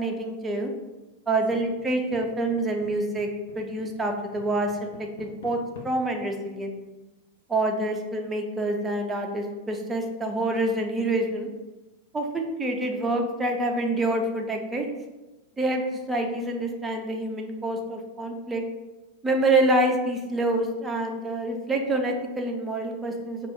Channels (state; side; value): normal; both; correlation 0.38